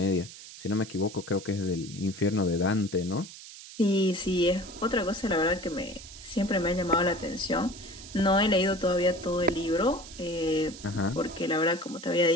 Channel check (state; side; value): noise; right; hiss, 15 dB below the sound